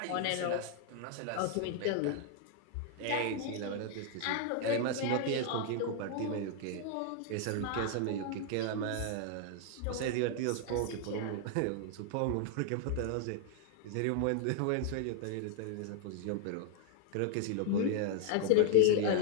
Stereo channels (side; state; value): both; different; correlation 0.00